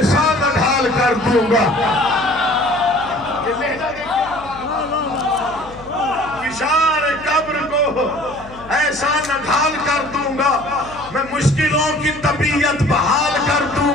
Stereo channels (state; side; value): noise; left; hum, 19 dB below the sound